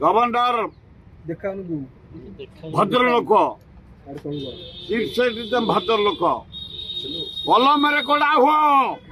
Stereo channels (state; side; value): identical; both; correlation 1.00